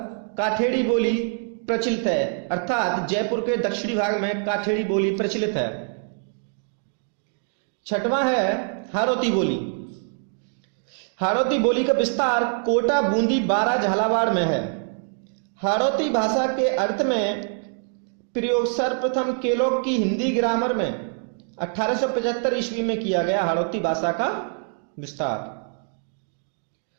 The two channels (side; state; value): left; silent; 59 dB below the other